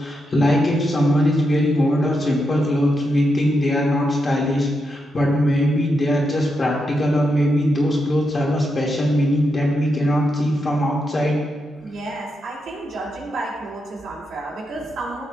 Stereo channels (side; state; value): both; normal; correlation 0.84